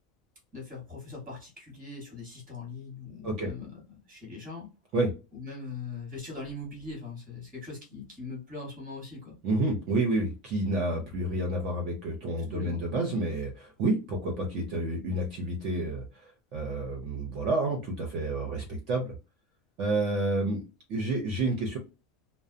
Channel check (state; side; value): normal; both; correlation 0.32